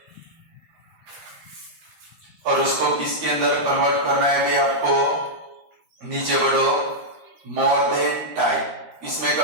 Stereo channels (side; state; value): left; late; 13 ms